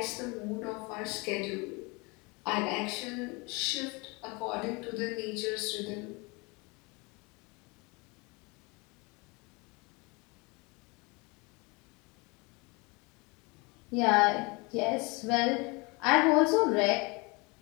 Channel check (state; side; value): quieter; right; 27.5 dB